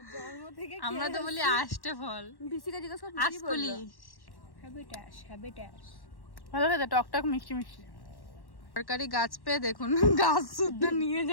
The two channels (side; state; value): right; late; 1.1 ms